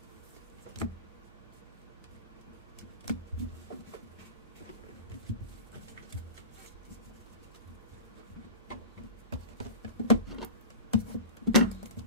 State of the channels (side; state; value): both; inverted; correlation -0.31